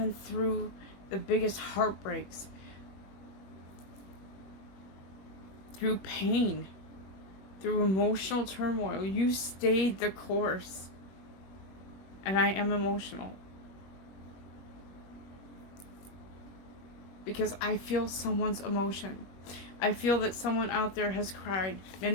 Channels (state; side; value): late; right; 21 ms